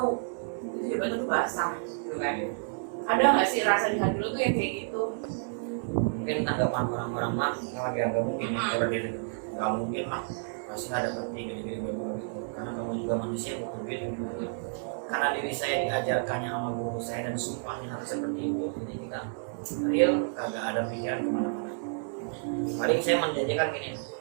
itu jabatan lu basah gitu kan. Ada nggak sih rasa di hati lu tuh yang kayak gitu? Mungkin tanggapan orang-orang mah nggak mungkin ya seperti itu, nggak mungkin lah, pasti ada seperti gini-gini gitu, karena kamu juga manusia bukan gitu. Karena diri saya diajarkannya sama guru saya dan sumpahnya harus seperti itu, jadi kita real kagak ada pikiran kemana-mana. Paling saya menjanjikan gini,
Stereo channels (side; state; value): left; silent; 58 dB below the other